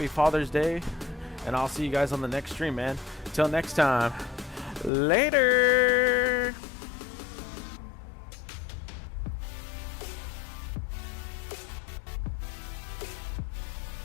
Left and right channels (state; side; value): drops out; right; at 4.9 s